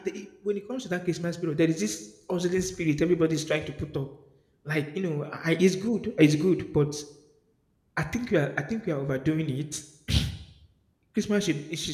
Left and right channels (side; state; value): both; identical; correlation 1.00